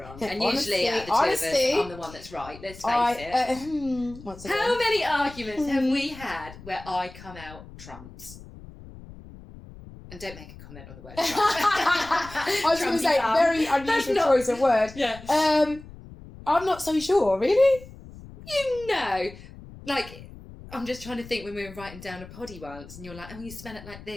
And honestly, usually out of the two of us, I'm the one that's right. Let's face it. Once again. How many arguments have we had where I come out trumps? And don't make a comment on the word Trump. I was going to say, very unusual choice of word. Yeah. I'm not so sure, really. Like, I'm just trying to think when we were writing down a poddy once, and you're like, oh, you smell it like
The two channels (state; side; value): noise; left; rumble, 17 dB below the sound